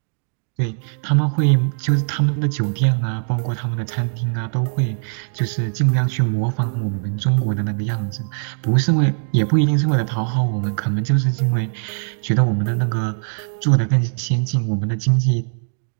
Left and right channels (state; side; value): silent; left; 59 dB below the other